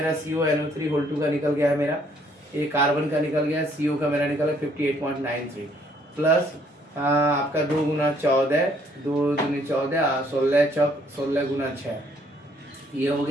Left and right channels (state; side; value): normal; both; correlation 0.65